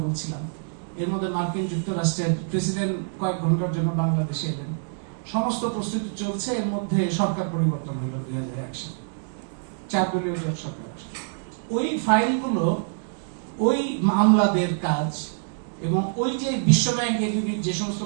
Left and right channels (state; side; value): silent; left; digital silence